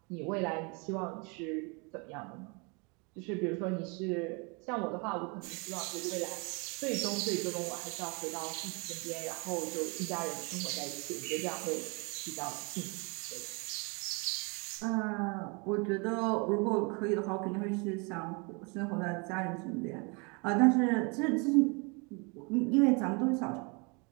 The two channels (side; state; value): left; quieter; 31.5 dB